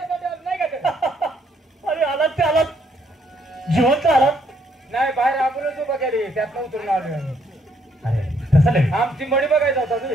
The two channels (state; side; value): normal; both; correlation 0.70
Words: का ते? अरे आलात ते आलात जिवंत आलात. नाही बाहेर आपणच उभा केली त्यातनं उतरून आलोय आम्ही. अरे तसं नाही आमची मडी बघायचा होता